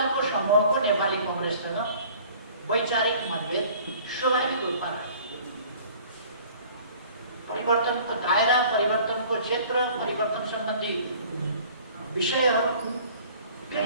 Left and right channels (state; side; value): inverted; both; correlation -0.50